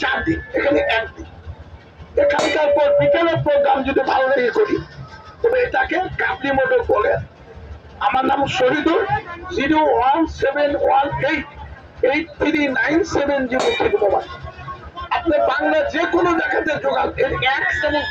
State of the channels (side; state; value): both; identical; correlation 1.00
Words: 4 দিন, এখানে 1 দিন। এখানকার পর বিকেলের প্রোগ্রাম যদি ভালো লেগে করি তবে এটাকে কাবলি মোটর বলে। আমার নাম শহীদুল। 01718839703 মোবাইল। আপনি বাংলা যে কোনো জায়গাতে যোগান, এর 1 চামচ